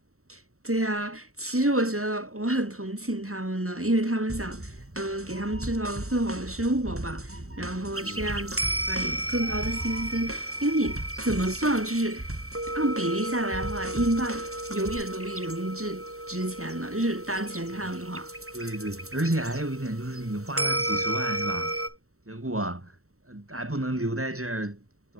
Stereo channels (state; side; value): late; left; 0.64 ms